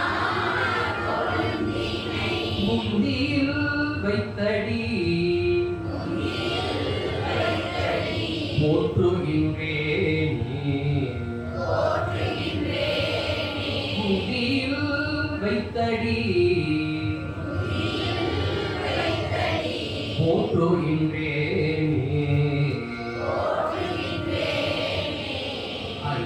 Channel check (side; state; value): both; identical; correlation 1.00